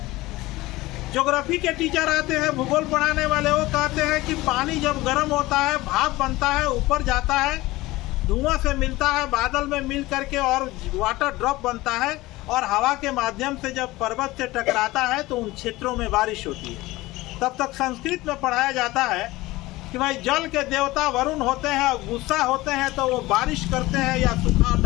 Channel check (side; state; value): right; quieter; 19.2 dB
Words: ज्योग्राफी के टीचर आते हैं, भूगोल पढ़ाने वाले, वो कहते हैं कि पानी जब गर्म होता है, भाप बनता है, ऊपर जाता है, धुआं से मिलता है, बादल में मिल करके और वाटर ड्रॉप बनता है, और हवा के माध्यम से जब पर्वत से टकराता है तो उन क्षेत्रों में बारिश होती है। तब तक संस्कृत में पढ़ाया जाता है कि भाई जल के देवता वरुण होते हैं, गुस्सा होते हैं तो वो बारिश करते हैं या सुखाड़